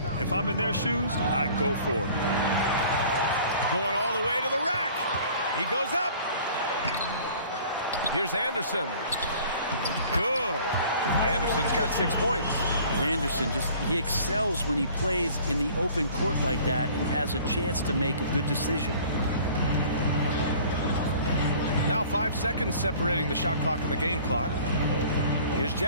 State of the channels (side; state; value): both; inverted; correlation -0.49